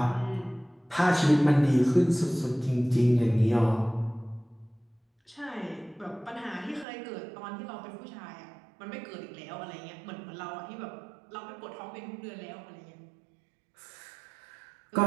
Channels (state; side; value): drops out; left; at 6.9 s